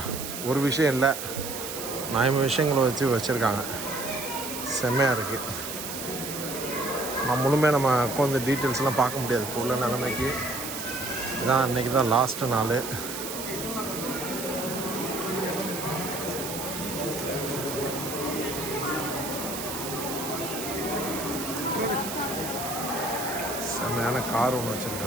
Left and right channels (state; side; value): noise; right; hiss, 7 dB below the sound